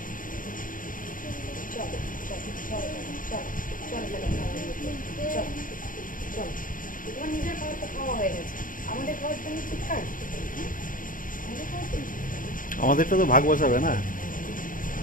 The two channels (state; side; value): late; right; 0.39 ms